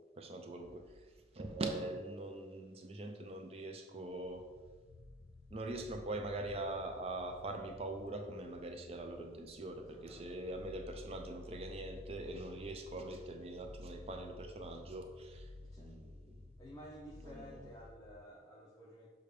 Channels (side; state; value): both; normal; correlation 0.41